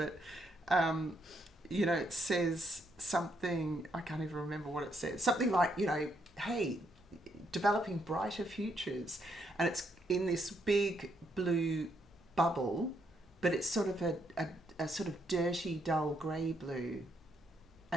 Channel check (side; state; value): both; normal; correlation 0.75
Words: you know, it says something, I can't even remember what it says. Something like, you know, hey, developing brighter futures. And it's in this big blue bubble, but it's sort of a sort of dirty, dull grey blue.